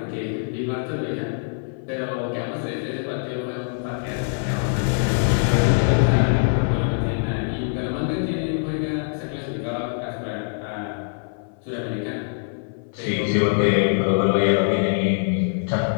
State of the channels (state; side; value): silent; right; 58 dB below the other